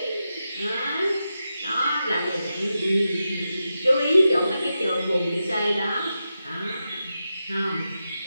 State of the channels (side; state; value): both; inverted; correlation -0.89